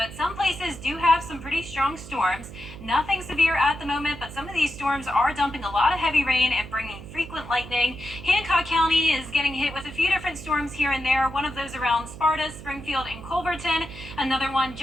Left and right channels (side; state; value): right; noise; hum, 14 dB below the sound